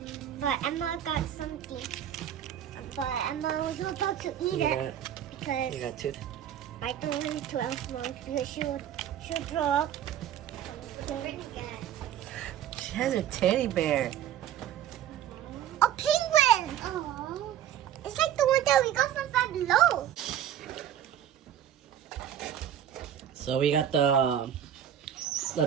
but Emma got something. But Emma was about to eat it because You got tooth? I don't want it to Elf because she'll throw up. She has a teddy bear. A penguin! Oh, it's like the one that we got from Five Below. So we got the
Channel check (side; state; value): left; quieter; 10.3 dB